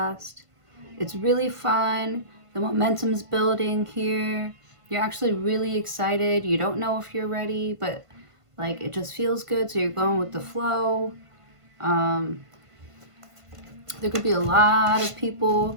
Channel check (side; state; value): left; late; 1.5 ms